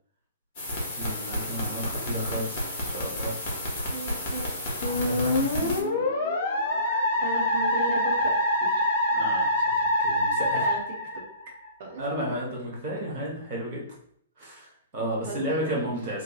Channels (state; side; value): inverted; both; correlation -0.46